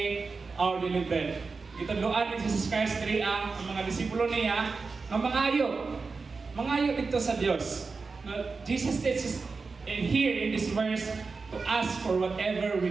our daily bread. Gituluan ni Jesus Christ diri ang mga disipulo niya nga mangayo dito sa Dios. Jesus teaches here in this verse to ask for whatever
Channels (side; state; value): left; quieter; 4.4 dB